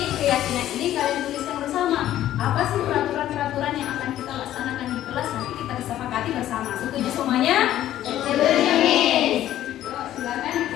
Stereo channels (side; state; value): right; quieter; 12.7 dB